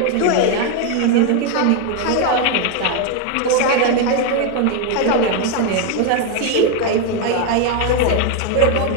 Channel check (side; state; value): both; different; correlation 0.01